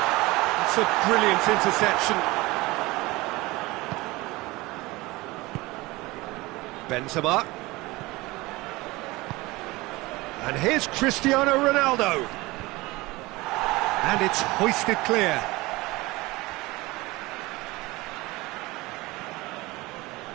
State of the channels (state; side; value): quieter; left; 21.3 dB